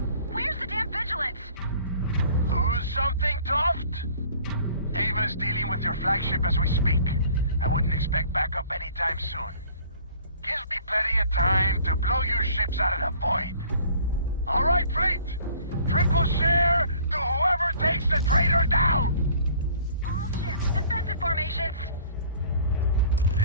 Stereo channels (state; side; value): inverted; both; correlation -0.53